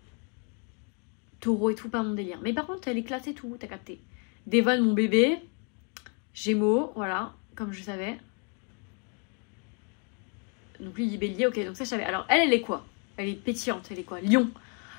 Taureau et tout, pas mon délire. Mais par contre, elle est classe et tout, t'as capté. Devon, mon bébé. Gémeaux, voilà, comme je savais. Donc lui, il est bélier, ok, donc ça je savais. Alors elle est quoi? Elle est pétillante, elle est quoi? Lion.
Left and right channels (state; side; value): quieter; right; 38.3 dB